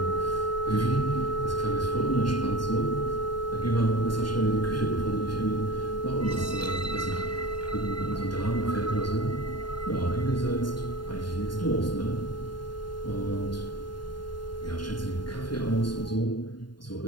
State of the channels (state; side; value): late; right; 0.71 ms